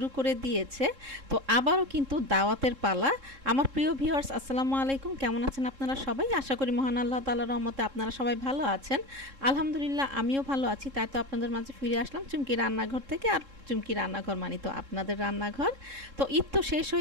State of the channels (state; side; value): late; left; 3.7 ms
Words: করে দিয়েছে। তো আবারও কিন্তু দাওয়াতের পালা। আমার প্রিয় ভিউয়ার্স, আসসালামু আলাইকুম। কেমন আছেন আপনারা সবাই? আশা করি মহান আল্লাহ তাআলার রহমতে আপনারা সবাই ভালো আছেন। আলহামদুলিল্লাহ আমিও ভালো আছি। তাই তো আপনাদের মাঝে ফিরে আসলাম চুমকি রান্নাঘর থেকে। আর চুমকি রান্নাঘর মানে তো আপনাদের রান্নাঘর। তো ঈদ তো শেষ